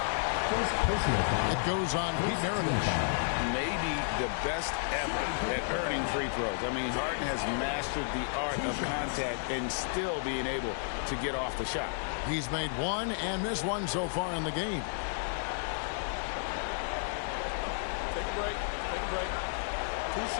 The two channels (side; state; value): right; silent; digital silence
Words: It goes on Pete Maravich. Maybe the best ever at earning free throws. I mean, Harden has mastered the art of contact and still being able to get off the shot. He's made 1 and missed 1 so far in the game. Take a break. Take a break. 2